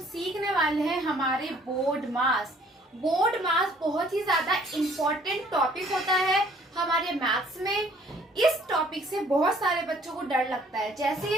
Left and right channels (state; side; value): normal; both; correlation 0.59